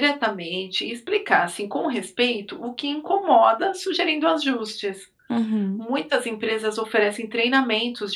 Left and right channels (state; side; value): identical; both; correlation 1.00